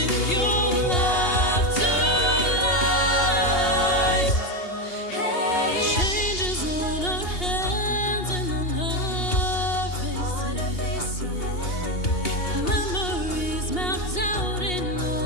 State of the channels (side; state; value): right; late; 2.8 ms